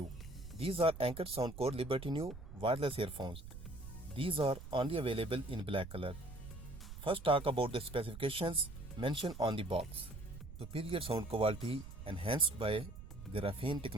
These are Anker Soundcore Liberty New wireless earphones. These are only available in black color. First talk about the specifications mentioned on the box. Superior sound quality enhanced by graphene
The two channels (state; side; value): noise; right; rumble, 12 dB below the sound